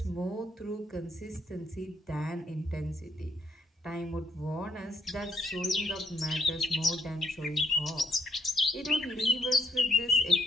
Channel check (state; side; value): normal; both; correlation 0.68